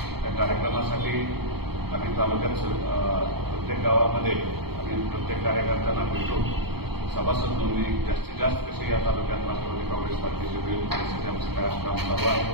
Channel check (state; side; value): late; left; 0.96 ms